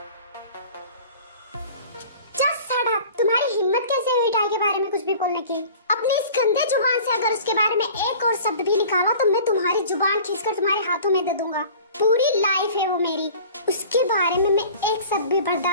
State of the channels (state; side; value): inverted; both; correlation -0.44